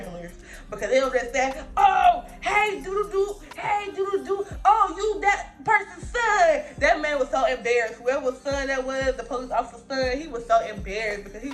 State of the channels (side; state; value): both; identical; correlation 1.00